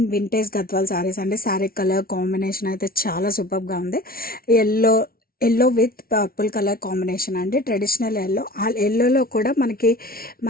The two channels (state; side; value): late; right; 0.43 ms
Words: vintage Gadwal saris అండి. Sari colour combination అయితే చాలా సూపర్గా ఉంది. Yellow yellow with purple colour combination అండి. Traditional yellow. ఆ ఎల్లోలో కూడా మనకి